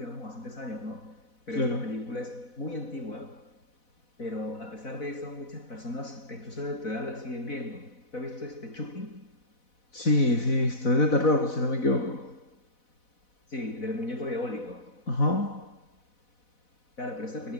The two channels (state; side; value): late; right; 4.1 ms